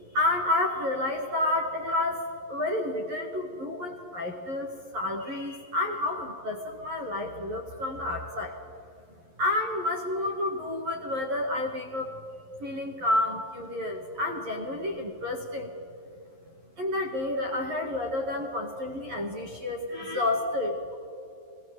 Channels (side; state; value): left; late; 11 ms